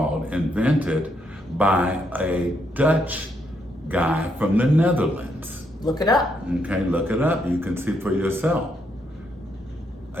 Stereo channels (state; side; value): normal; both; correlation 0.77